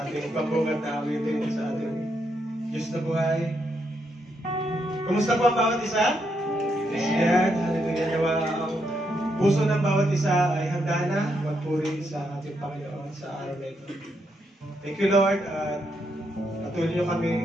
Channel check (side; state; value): both; normal; correlation 0.79